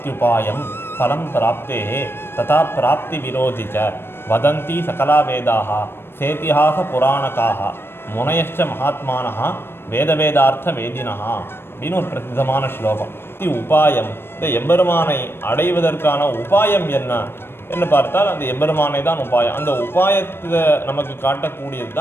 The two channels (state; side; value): late; right; 0.11 ms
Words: பலம் பிராப்தேஹே, ததா பிராப்தி விரோதிச்ச வதந்தி சகலா வேதாக, சேத்திஹாச புராணக்காக, முனையச்ச மகாத்மானः, வேதவேதார்த்த வேதினः அப்படின்னு ஒரு பிரசித்தமான ஸ்லோகம். உபாயம், இந்த எம்பெருமானை அடைவதற்கான உபாயம் என்ன என்று பார்த்தால் அந்த எம்பெருமானை தான் உபாயம். அந்த உபாயத்தை நமக்கு காட்டக்கூடியது